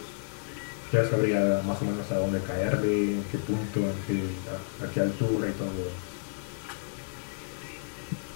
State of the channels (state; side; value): silent; right; digital silence